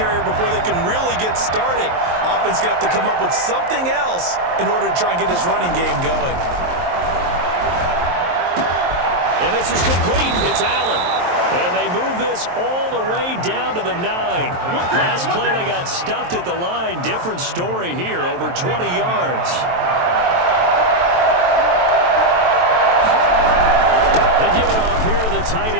before they can really get started. Offense going to have to come up with something else in order to try and get this running game going. And this is complete. It's Allen. And they move this all the way down to the 9. Last play, they got stuffed at the line. Different story here, over 20 yards. They give it off here to the tight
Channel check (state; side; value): late; left; 23 ms